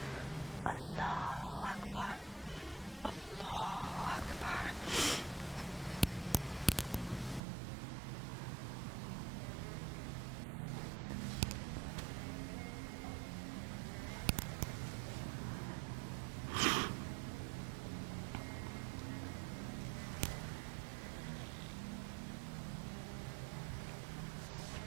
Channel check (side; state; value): left; drops out; at 7.4 s